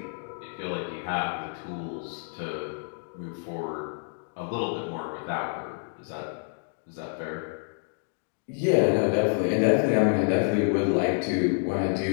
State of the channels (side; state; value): right; silent; digital silence